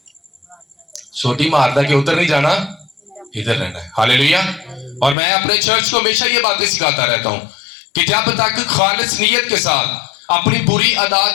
سوٹی ماردا کہ ادھر نہیں جانا, ادھر رہنا ہے. ہاللیلویا. اور میں اپنے چرچ کو ہمیشہ یہ باتیں سکھاتا رہتا ہوں کہ جب تک خالص نیت کے ساتھ اپنی بری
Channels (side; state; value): right; drops out; at 5.2 s